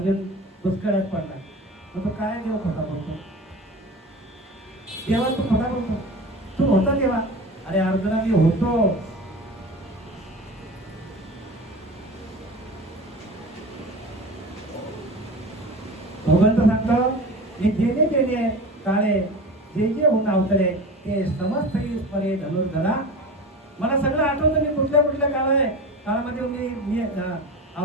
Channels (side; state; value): both; normal; correlation 0.33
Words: दुष्काळात पडला. मग तो काय देव खोटा बोलतो? देवा तू खोटा बोलतो? तू होता देवा? अरे अर्जुना मी होतो. भगवंत सांगतो, मी जेणे जेणे काळे जे जे होऊन अवतरे ते समस्त परे धनुर्धरा. मला सगळं आठवतं, मी कुठल्या कुठल्या काळामध्ये मी